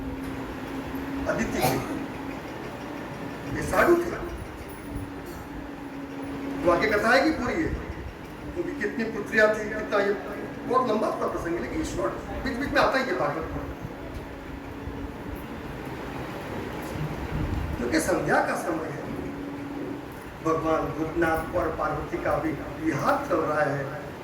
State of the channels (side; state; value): both; identical; correlation 1.00